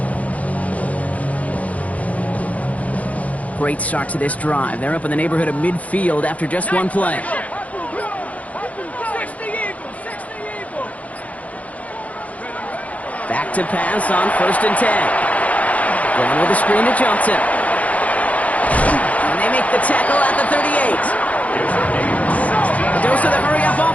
Great start to this drive. They're up in the neighborhood of midfield after just one play. 60 Eagles. Back to pass on first and 10. Going with a screen to Johnson. And they make the tackle at the 38. Dose of the hurry-up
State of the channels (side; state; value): right; late; 0.069 ms